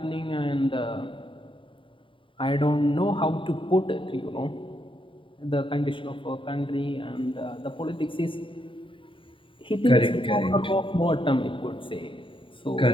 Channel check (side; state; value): right; late; 0.25 ms